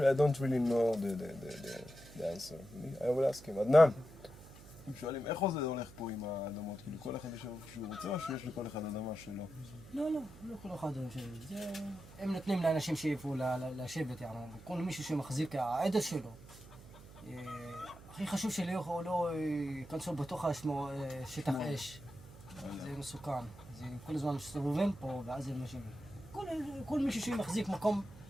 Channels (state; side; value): noise; right; hum, 18 dB below the sound